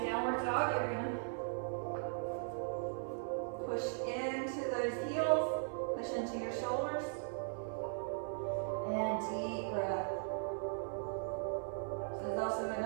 downward dog, you're gonna push into those heels, push into your shoulders, and deep breath. This is also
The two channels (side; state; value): left; silent; 52 dB below the other